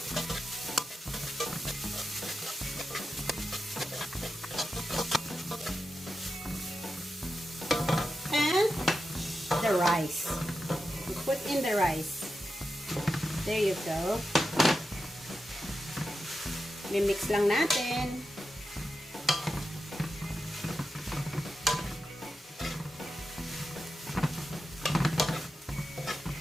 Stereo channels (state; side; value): normal; both; correlation 0.89